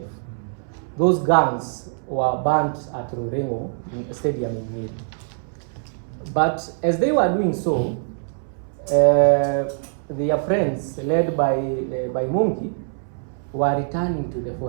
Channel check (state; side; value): silent; left; 63 dB below the other